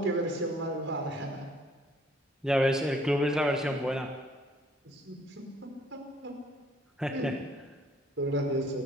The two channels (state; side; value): normal; both; correlation 0.61